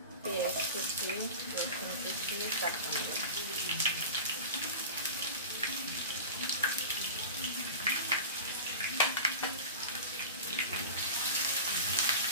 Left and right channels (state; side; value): inverted; both; correlation -0.30